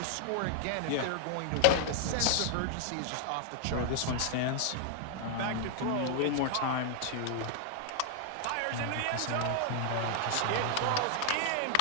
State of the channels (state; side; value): different; both; correlation 0.00